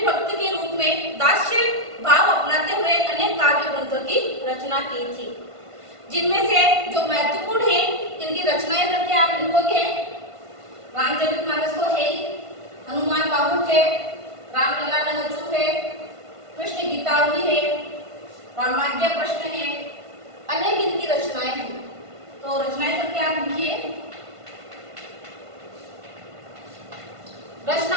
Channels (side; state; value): left; late; 1.5 ms